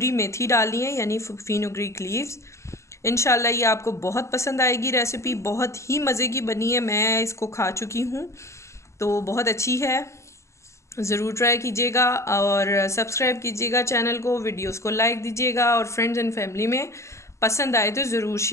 मेथी डाली है यानी फेनुग्रीक लीव्स। इंशाल्लाह ये आपको बहुत पसंद आएगी रेसिपी, बहुत ही मज़े की बनी है, मैं इसको खा चुकी हूँ तो बहुत अच्छी है। ज़रूर ट्राई कीजिएगा और सब्सक्राइब कीजिएगा चैनल को, वीडियोस को लाइक दीजिएगा, और फ्रेंड्स एंड फैमिली में पसंद आए तो ज़रूर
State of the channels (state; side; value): late; right; 0.14 ms